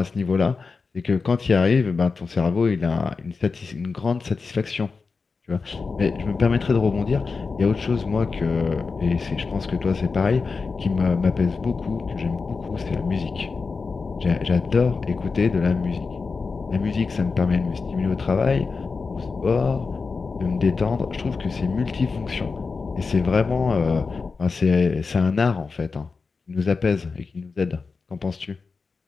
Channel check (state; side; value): quieter; right; 4.6 dB